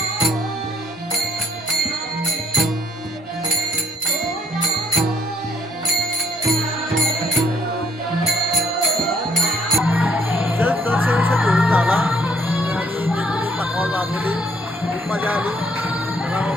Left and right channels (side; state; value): both; normal; correlation 0.66